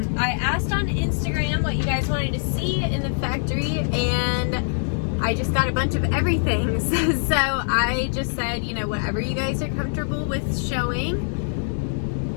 asked on Instagram what you guys wanted to see in the factory, and I just got a bunch of everything. So I just said, you know, whatever you guys are comfortable with showing,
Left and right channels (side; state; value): right; silent; 59 dB below the other